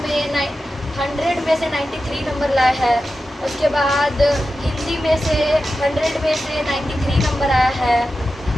100 में से 93 नंबर लाया है। उसके बाद हिंदी में से 100 में से 93 नंबर आया है।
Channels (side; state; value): both; normal; correlation 0.92